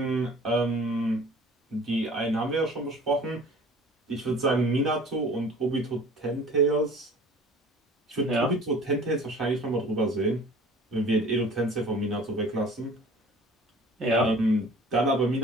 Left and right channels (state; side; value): normal; both; correlation 0.47